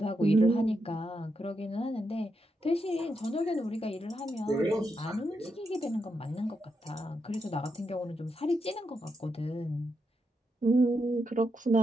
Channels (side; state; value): both; normal; correlation 0.84